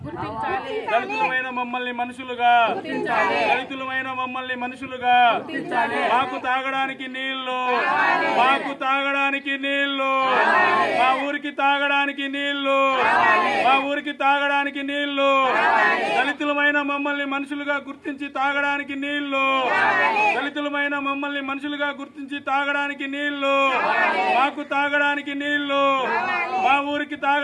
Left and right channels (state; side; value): identical; both; correlation 1.00